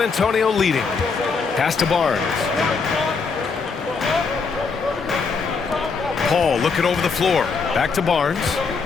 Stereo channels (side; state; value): right; quieter; 4.9 dB